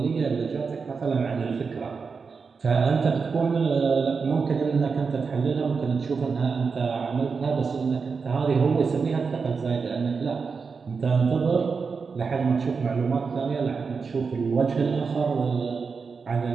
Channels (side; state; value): left; quieter; 5.1 dB